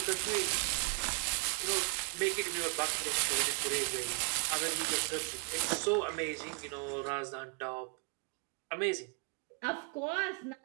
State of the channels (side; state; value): left; quieter; 36.7 dB